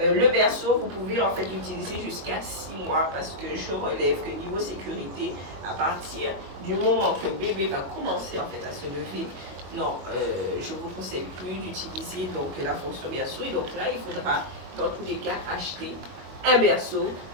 le berceau, vous pouvez en fait l'utiliser jusqu'à 6 mois parce que je relève que niveau sécurité, à partir du moment que bébé va commencer en fait à se lever, non, je ne vous conseille plus d'utiliser donc la fonction berceau. Et donc là, il faudra dans tous les cas acheter un berceau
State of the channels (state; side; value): late; left; 22 ms